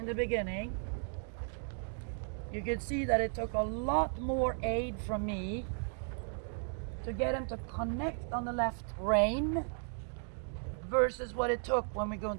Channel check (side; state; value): left; silent; 54 dB below the other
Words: the beginning you could see that it took a lot more aid from me to get him to connect on the left rein versus what it took when we go